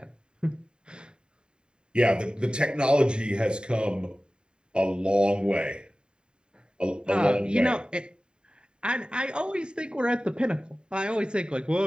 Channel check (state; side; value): late; left; 0.050 ms